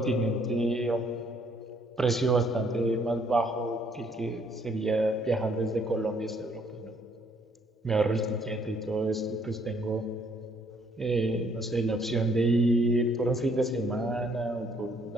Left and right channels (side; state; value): both; normal; correlation 0.66